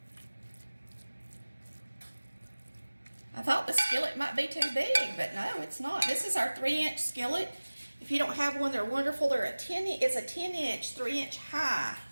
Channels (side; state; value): both; inverted; correlation -1.00